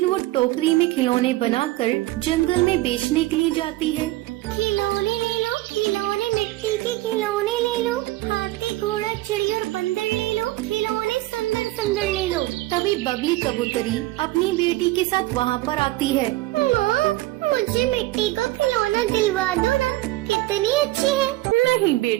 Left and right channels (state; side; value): quieter; left; 18.1 dB